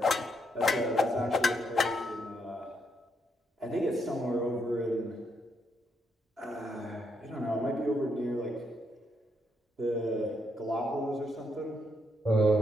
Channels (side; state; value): both; normal; correlation 0.77